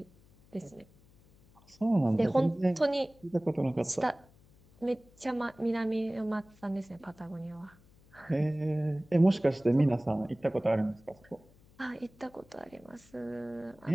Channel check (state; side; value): noise; left; hum, 28 dB below the sound